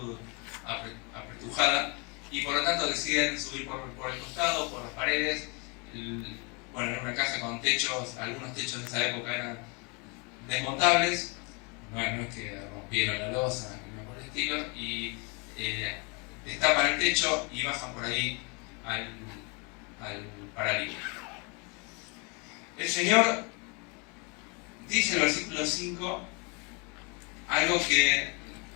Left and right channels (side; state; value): right; quieter; 32.0 dB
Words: apretujada, y por lo tanto deciden subir por el costado, por las paredes. Bueno, era una casa con techos, algunos techos de esa época eran desmontables, no es que rompieron la losa, ni por el estilo, y destapan el techo y bajan por ahí al paralítico. El Señor dice en el versículo 5 algo que